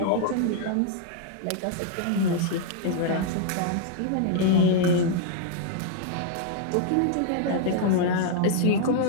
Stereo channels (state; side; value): different; both; correlation -0.01